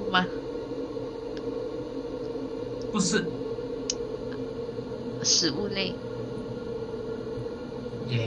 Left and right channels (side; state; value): both; identical; correlation 1.00